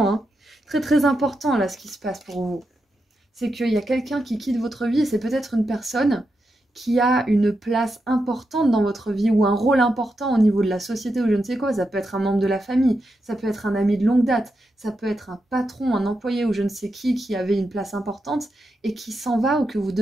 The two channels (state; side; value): normal; both; correlation 0.86